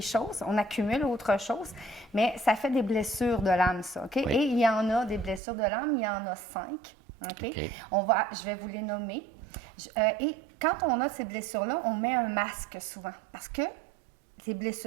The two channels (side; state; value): left; drops out; at 5.4 s